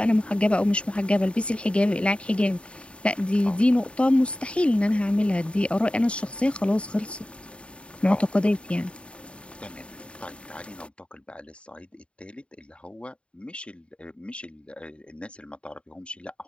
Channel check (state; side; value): late; right; 0.058 ms